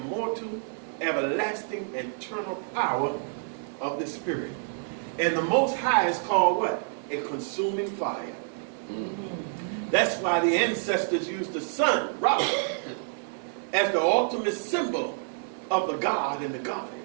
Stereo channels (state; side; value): silent; left; 59 dB below the other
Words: everlasting, eternal power of the spirit. And the Most High is called what? A consuming fire. That's why the ancestors used the sun, Ra, as the ultimate symbol of the God and the